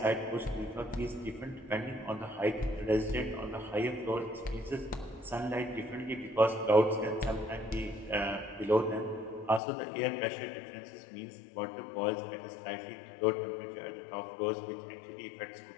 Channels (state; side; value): drops out; right; at 9.6 s